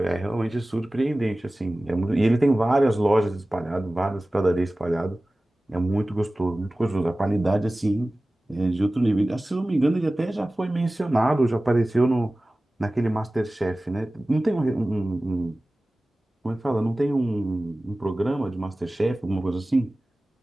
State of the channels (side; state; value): both; normal; correlation 0.97